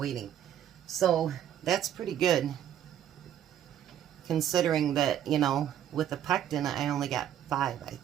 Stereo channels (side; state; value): left; quieter; 10.6 dB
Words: So that's pretty good. Considering that, you know, with the PECTIN, I only got 5, I